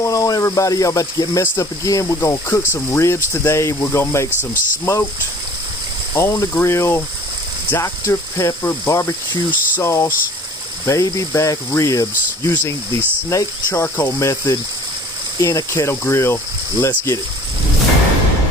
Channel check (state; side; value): normal; both; correlation 0.49